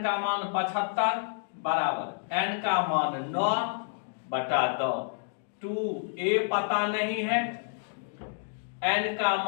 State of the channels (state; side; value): silent; right; digital silence